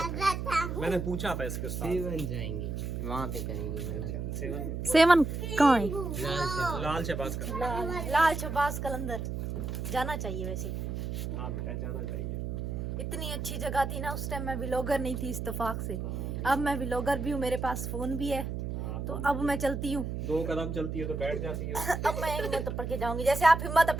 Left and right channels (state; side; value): noise; right; hum, 4 dB below the sound